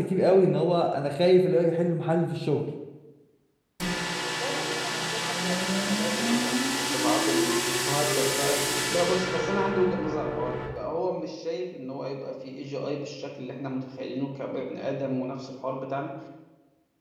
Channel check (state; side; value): identical; both; correlation 1.00